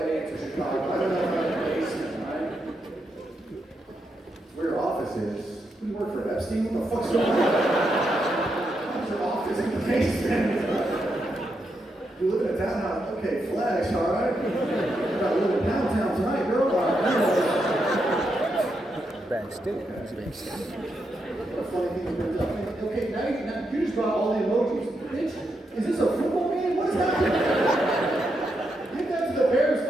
answer, Chicago. I don't know if I like the basement, right? It's where your office is. You work for Epstein? What the fuck's going on? How's your office in the basement? You live in a townhouse? Okay, flags, alright? You gotta live in downtown tonight, girl. Bad state. What a funny thing to bring up. Okay, now you just brought all the emojis. Bitch, is this a football game? What is happening? Get that to the Bears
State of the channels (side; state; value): both; normal; correlation 0.83